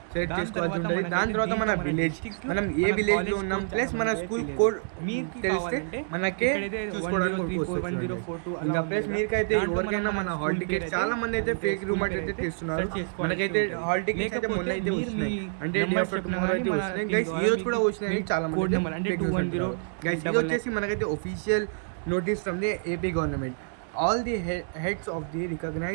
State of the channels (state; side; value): silent; left; digital silence